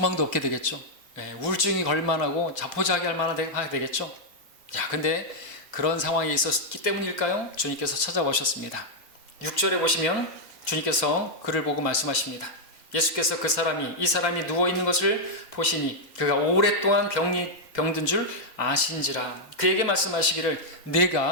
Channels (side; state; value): right; late; 2.1 ms